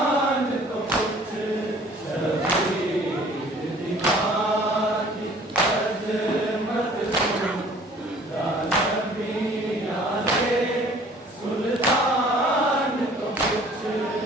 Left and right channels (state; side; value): normal; both; correlation 0.53